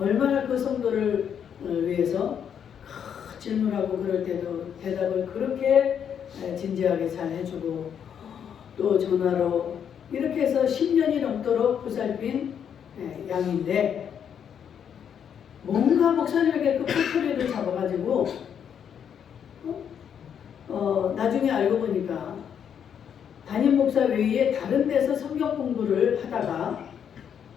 그 성도를 위해서 질문하고 그럴 때도 대답을 그렇게 진지하게 잘 해주고 또 전화로 이렇게 해서 10년이 넘도록 보살핀 양인데 뭔가 목사님에게 그 꼬투리를 잡아가지고 나중에 알고 보니까 담임 목사 외에 다른 데서 성경 공부를 하다가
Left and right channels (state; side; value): quieter; right; 8.2 dB